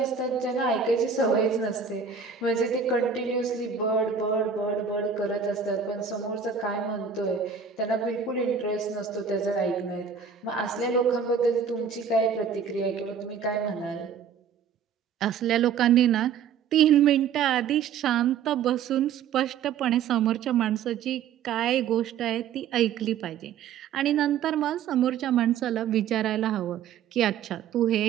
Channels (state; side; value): quieter; left; 7.1 dB